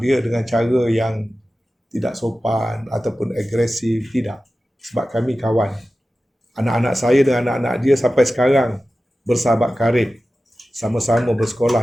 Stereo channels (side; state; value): both; normal; correlation 0.95